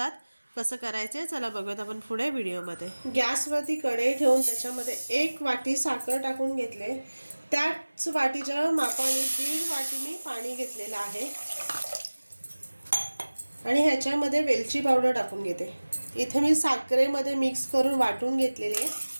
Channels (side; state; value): both; inverted; correlation -1.00